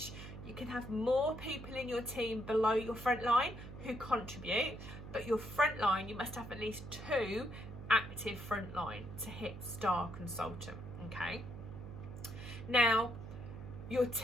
You can have more people in your team below your frontline who contribute, but your frontline, you must have at least 2 active frontline to hit Star Consultant, okay? Now, your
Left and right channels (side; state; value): right; noise; hum, 11 dB below the sound